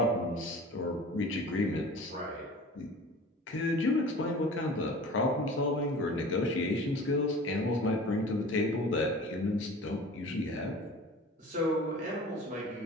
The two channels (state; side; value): normal; both; correlation 0.41